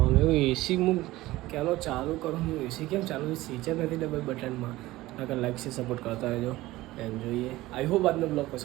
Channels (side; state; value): left; quieter; 17.9 dB